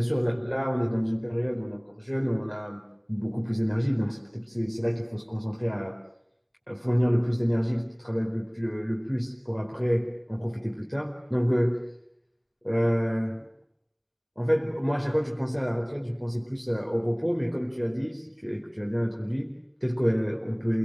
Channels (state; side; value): identical; both; correlation 1.00